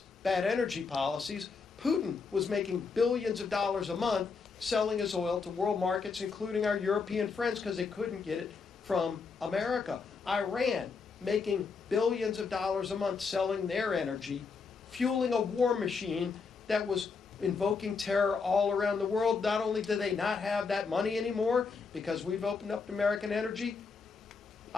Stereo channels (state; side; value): quieter; right; 5.0 dB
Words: bad energy policies. Putin was making billions of dollars a month selling his oil to world markets, including our European friends, because they couldn't get it from America. Iran making billions of dollars a month selling their energy, fueling a war machine that was invoking terror all around the world. Not only do they not have that money anymore because we've opened up American energy,